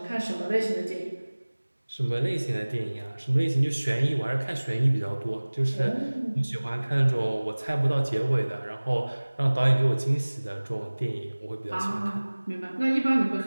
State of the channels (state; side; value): inverted; both; correlation -1.00